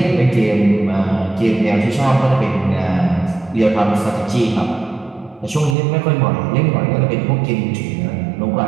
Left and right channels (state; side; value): drops out; left; at 5.8 s